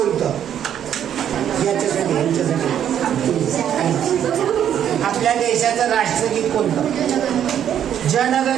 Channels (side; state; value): left; quieter; 9.7 dB